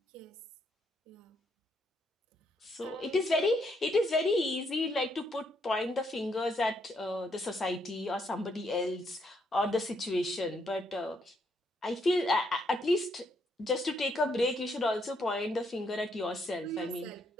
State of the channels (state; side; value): normal; both; correlation 0.75